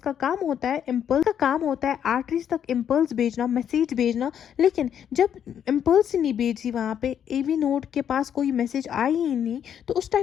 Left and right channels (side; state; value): right; quieter; 9.0 dB